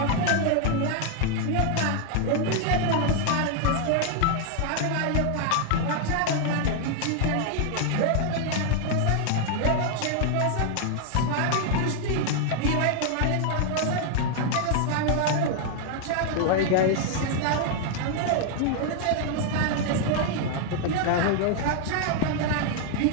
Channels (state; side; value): different; both; correlation 0.00